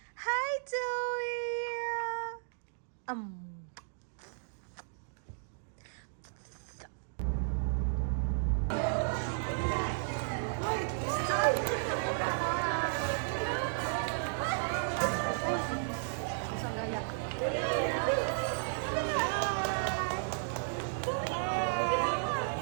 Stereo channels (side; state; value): left; silent; digital silence